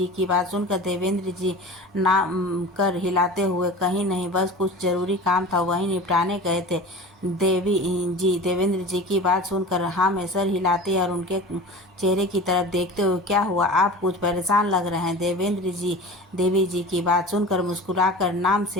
की बात सुनकर देवेंद्र जी नाम कर हिलाते हुए, कहीं नहीं, बस कुछ ज़रूरी काम था वहीं निपटाने गए थे। देवी जी देवेंद्र जी की बात सुनकर हाँ में सर हिलाते और उनके चेहरे की तरफ देखते हुए, क्या हुआ, आप कुछ परेशान लग रहे हैं। देवेंद्र जी देवी जी की बात सुनकर मुस्कुराकर नाम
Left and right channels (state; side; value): normal; both; correlation 0.36